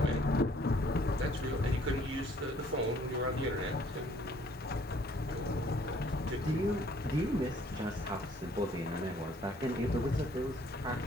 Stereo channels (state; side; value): normal; both; correlation 0.60